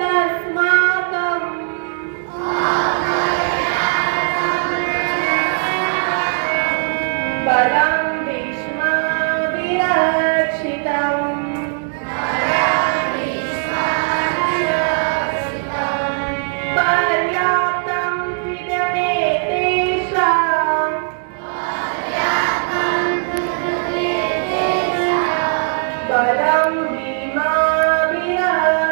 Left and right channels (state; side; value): silent; left; digital silence